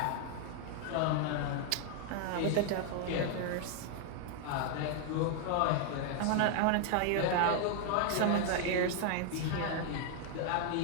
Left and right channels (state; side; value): different; both; correlation 0.00